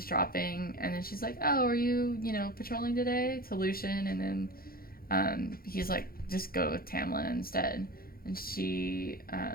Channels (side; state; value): right; late; 0.43 ms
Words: and then she's like, oh, are you, patrolling today? To Lucian, and then he's like, just go with Tamlin instead. And she